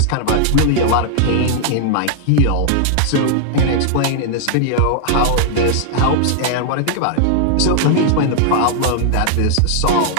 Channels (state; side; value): different; both; correlation -0.01